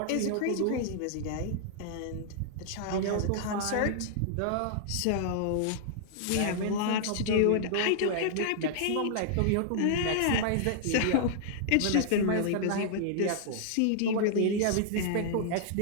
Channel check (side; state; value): both; different; correlation -0.01